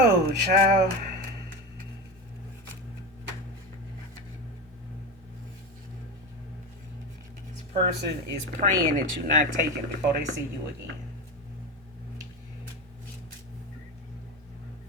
child, this person is praying that you not take it before they see you again.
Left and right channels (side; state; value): both; normal; correlation 0.22